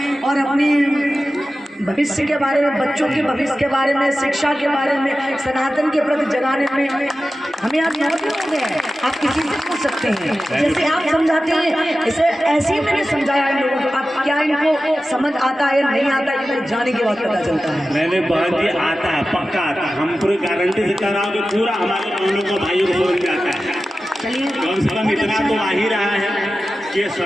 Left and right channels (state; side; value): normal; both; correlation 0.94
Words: और अपनी भविष्य के बारे में, बच्चों के भविष्य के बारे में, शिक्षा के बारे में, सनातन के प्रति जगाने में हमें आज 9 दिन हो गए। आप किसी से पूछ सकते हैं, जैसे आप समझाते हैं इसे ऐसे ही मैंने समझाया इन लोगों को। अब क्या इनको समझ आता है नहीं आता है, जाने के बाद पता चलता है। मैंने बहन जी आता है, पक्का आता है, हम पूरी गारंटी से कह रहा हूँ कि पूरा हमारे बहनों को भाइयों को समझ में आता है। चलिए कम से कम इतना तो आ ही रहा है कि